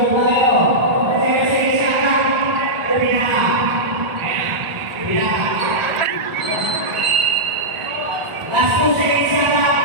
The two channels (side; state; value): left; late; 1.5 ms